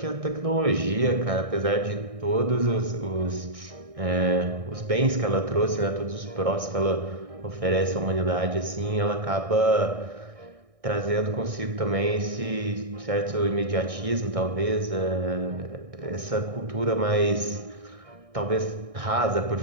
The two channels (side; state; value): left; late; 1.6 ms